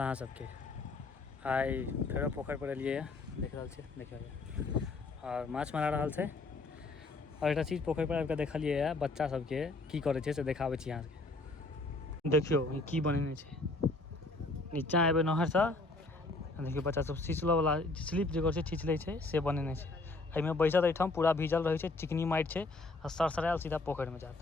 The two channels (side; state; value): right; quieter; 3.3 dB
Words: सबके आइ फेरो पोखर पर एलिए देख रहल छी देखिए और माछ मारा रहल छै और एक चीज पोखर पर आबि कऽ देखलिए बच्चा सबके की करे छै से देखाबै छी अहाँ सबके देखियो ई की बनेने छै नीचा एबे नहर से देखियो बच्चा सब छिछलो वाला स्लिप जे करे छै छिछले छै से बनेने छै एहिमे बैसत एठाम पूरा भीजल रहे छै चिकनी माइट छै आ सरसरायल सीधा पोखर में जात